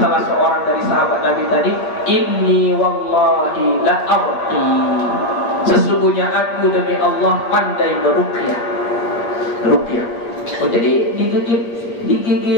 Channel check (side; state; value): right; late; 8.4 ms